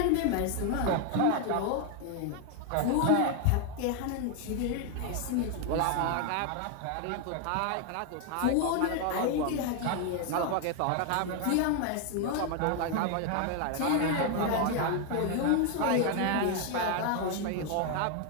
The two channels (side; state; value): both; different; correlation 0.01